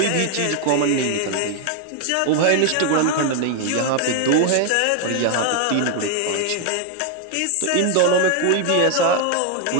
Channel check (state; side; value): different; both; correlation 0.00